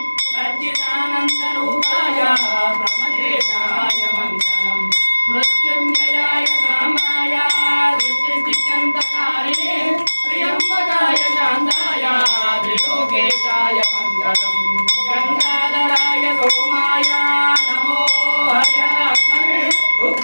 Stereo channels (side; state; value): both; inverted; correlation -1.00